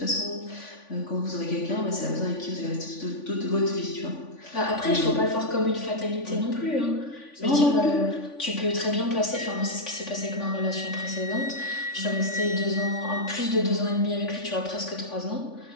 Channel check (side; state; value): right; late; 3.5 ms